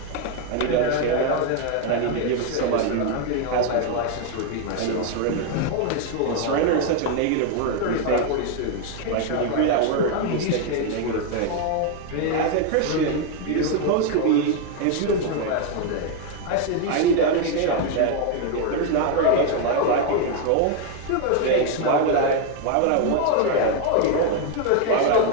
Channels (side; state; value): both; different; correlation 0.00